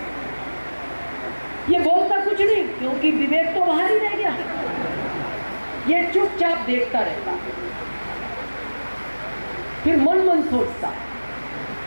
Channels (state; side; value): inverted; both; correlation -1.00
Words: ये बोलता कुछ नहीं क्योंकि विवेक तो बाहर ही रह गया। ये चुपचाप देखता रहता, फिर मन मन सोचता,